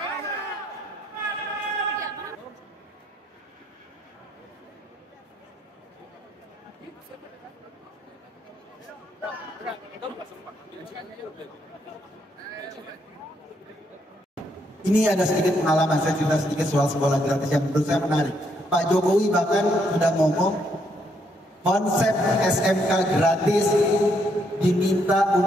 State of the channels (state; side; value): normal; both; correlation 0.74